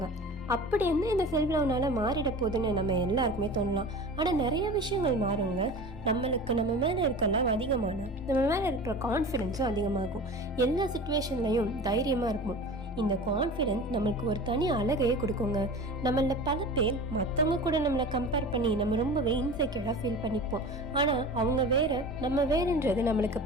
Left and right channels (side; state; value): both; normal; correlation 0.36